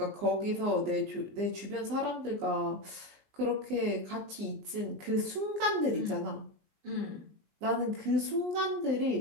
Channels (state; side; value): late; left; 19 ms